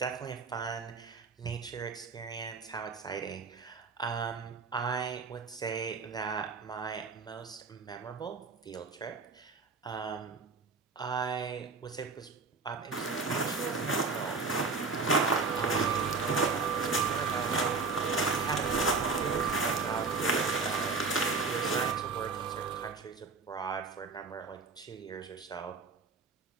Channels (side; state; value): left; quieter; 4.4 dB